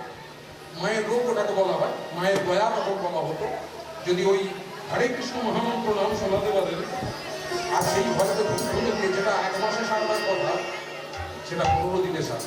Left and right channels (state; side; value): identical; both; correlation 1.00